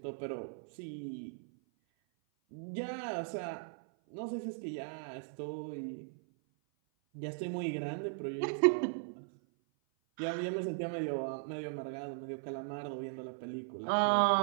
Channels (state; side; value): silent; left; 53 dB below the other